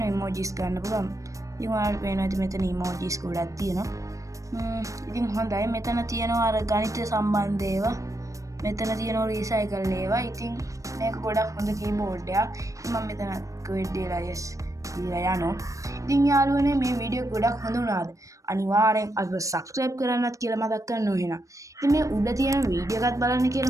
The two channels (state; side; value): late; left; 0.16 ms